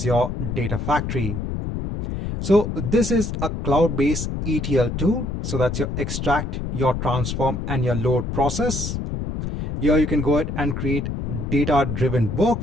Data Factory. So this is a cloud-based ETL tool. So that's your extract, your transform, and your load process. Here you can go ahead and create data-driven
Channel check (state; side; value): noise; left; rumble, 4 dB below the sound